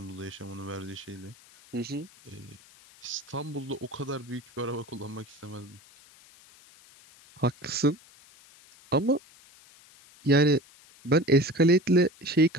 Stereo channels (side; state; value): left; noise; hiss, 25 dB below the sound